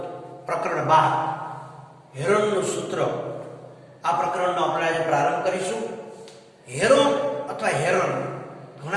પ્રકરણ 12 હેરોનનું સૂત્ર. આ પ્રકરણનો આપણે આજે પ્રારંભ કરીશું. હેરોન અથવા હેરોન,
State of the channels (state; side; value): identical; both; correlation 1.00